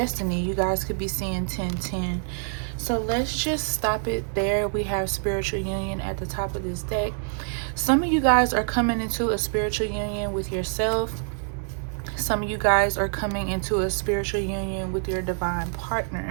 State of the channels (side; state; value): left; silent; digital silence